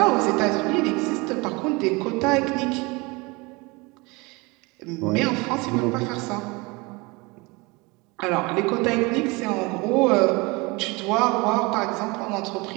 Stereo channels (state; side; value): quieter; left; 25.7 dB